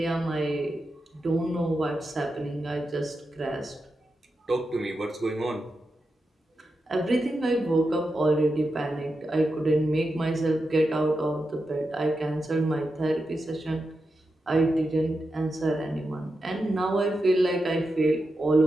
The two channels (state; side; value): normal; both; correlation 0.88